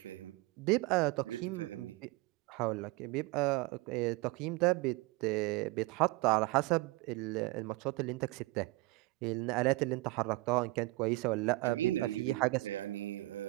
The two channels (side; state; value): left; quieter; 21.5 dB